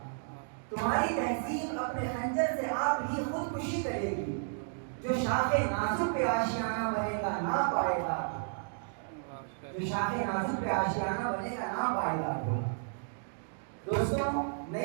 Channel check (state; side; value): silent; left; digital silence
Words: تمہاری تہذیب اپنے خنجر سے آپ ہی خودکشی کرے گی، جو شاخ نازک پہ آشیانہ بنے گا نہ پائے گا، جو شاخ نازک پہ آشیانہ بنے گا نہ پائے گا. دوستوں،